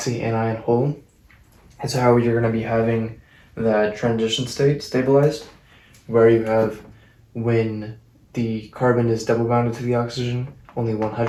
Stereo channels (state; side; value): identical; both; correlation 1.00